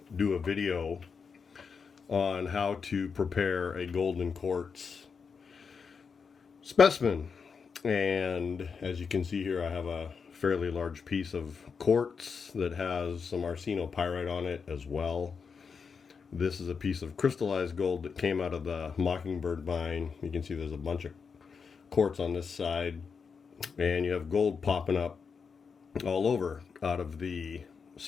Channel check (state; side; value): quieter; right; 5.7 dB